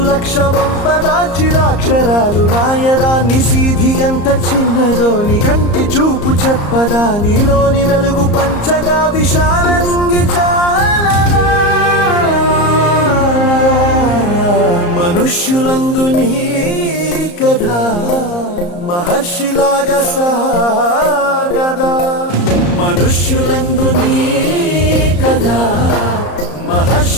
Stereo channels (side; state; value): right; late; 34 ms